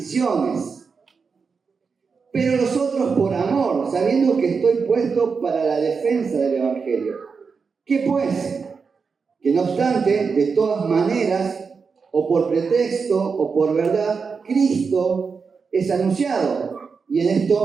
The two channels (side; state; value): left; quieter; 5.3 dB